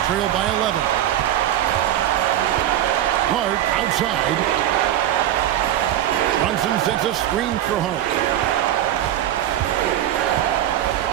trail by 11. Hart outside. Brunson sets a screen for Hart.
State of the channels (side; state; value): left; quieter; 12.0 dB